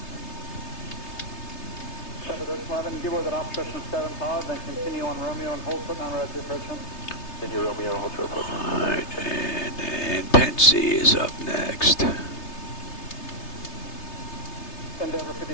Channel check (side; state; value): right; late; 3.3 ms